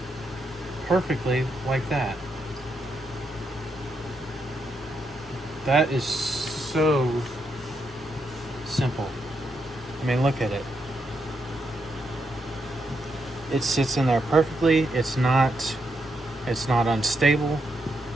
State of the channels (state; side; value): normal; both; correlation 0.81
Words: perfectly like that. That is so simple. I mean, look at it. It sits in there perfectly. It's not unstable.